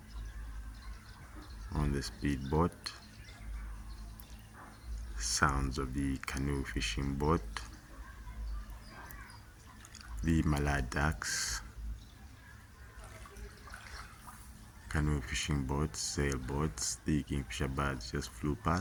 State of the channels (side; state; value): both; identical; correlation 1.00